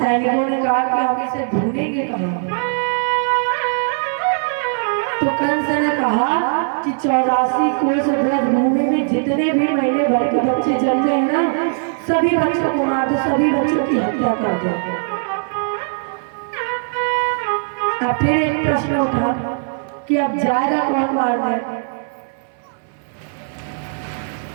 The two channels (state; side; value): silent; left; 60 dB below the other